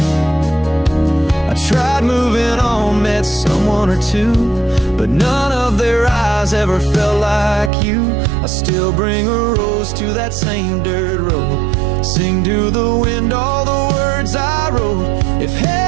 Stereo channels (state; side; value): drops out; left; at 7.7 s